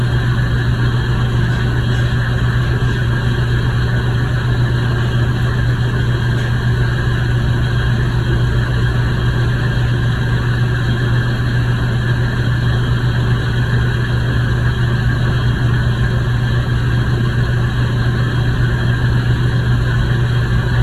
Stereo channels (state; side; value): identical; both; correlation 1.00